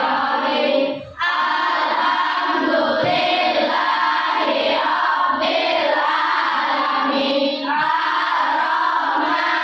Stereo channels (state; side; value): identical; both; correlation 1.00